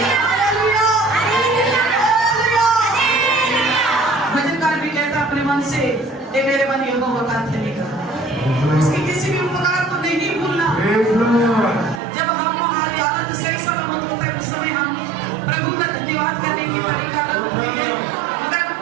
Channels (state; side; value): drops out; left; at 12.0 s